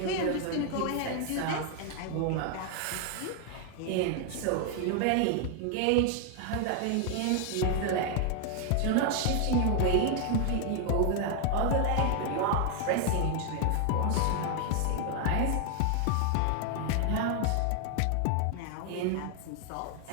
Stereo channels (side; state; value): both; different; correlation 0.00